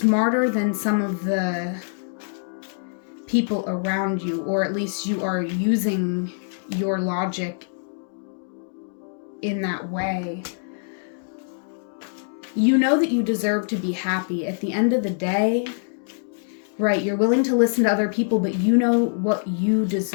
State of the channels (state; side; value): silent; right; digital silence